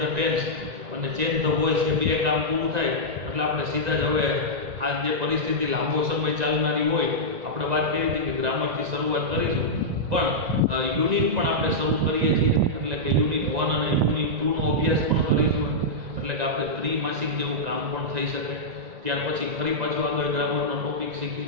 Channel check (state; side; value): late; left; 1.9 ms